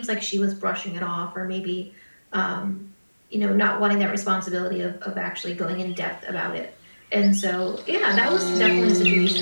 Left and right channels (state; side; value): inverted; both; correlation -1.00